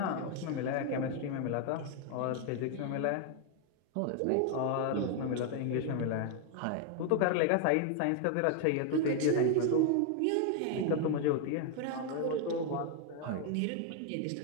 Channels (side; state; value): both; different; correlation 0.00